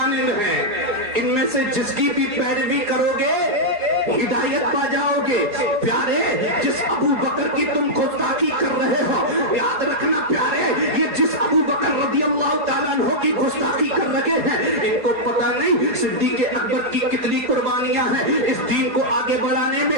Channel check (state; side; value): late; left; 4.3 ms